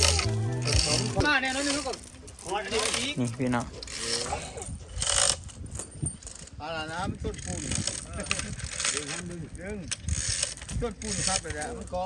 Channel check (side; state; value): both; identical; correlation 1.00